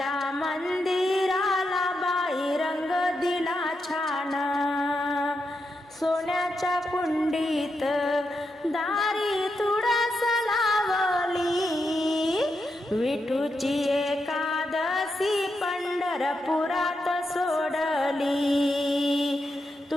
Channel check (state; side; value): normal; both; correlation 0.85